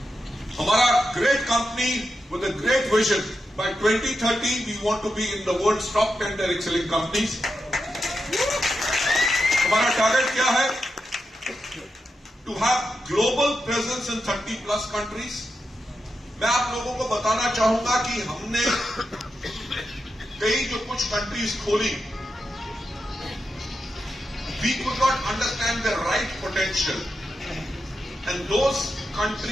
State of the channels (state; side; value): normal; both; correlation 0.88